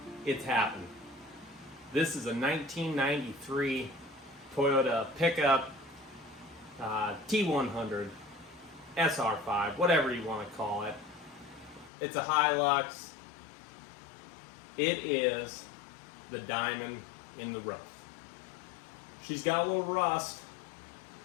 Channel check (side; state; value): right; drops out; at 11.9 s